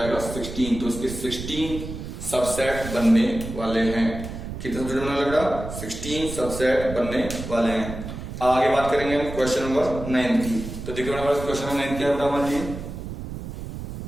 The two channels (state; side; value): noise; right; rumble, 9 dB below the sound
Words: 16। तो इसके 16 सबसेट बनने वाले हैं। कितना सबसेट बनने लग रहा, 16 सबसेट बनने वाले हैं। आगे बात करेंगे हम क्वेश्चन नंबर 9 की। तो देखिए हमारे क्वेश्चन नंबर 9 क्या है हमारे लिए,